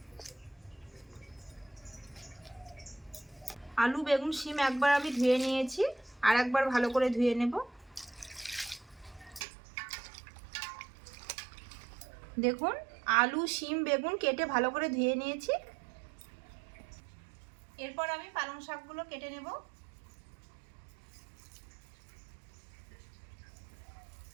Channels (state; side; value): drops out; left; at 9.4 s